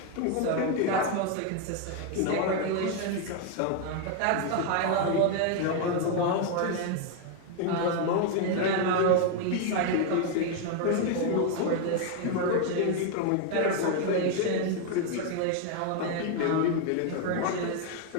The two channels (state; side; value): different; both; correlation 0.01